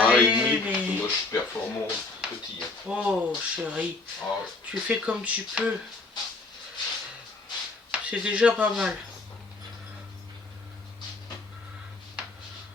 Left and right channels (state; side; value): quieter; right; 3.5 dB